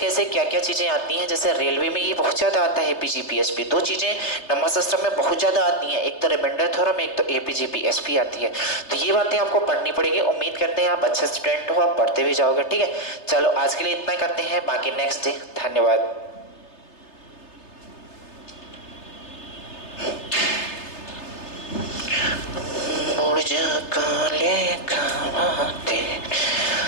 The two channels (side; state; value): right; late; 3.3 ms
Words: क्या क्या चीज़ें आती हैं। जैसे रेलवे में ये बहुत ज़्यादा आता है एपीजीपीएसपी, 2 चीज़ें नंबर सिस्टम में बहुत ज़्यादा आती हैं, एक तो रिमाइंडर थ्योरम, एक तो एपीजीपीएसपी आती है। तो ये बातें आपको पढ़नी पड़ेगी। उम्मीद करते हैं आप अच्छे स्टूडेंट हो, आप पढ़ते भी जाओगे, ठीक है। चलो आज के लिए इतना करते हैं, बाकी नेक्स्ट डे। धन्यवाद। काले खाते